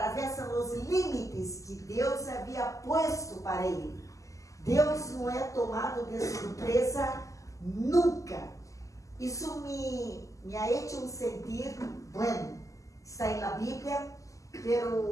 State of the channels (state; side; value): late; right; 0.16 ms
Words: os limites que Deus havia posto para ele. Deus não é tomado de surpresa nunca. Isso me ha hecho sentir, está na Bíblia, mas